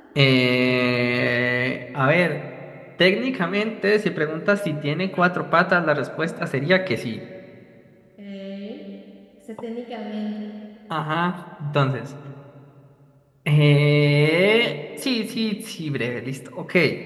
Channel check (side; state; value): both; identical; correlation 1.00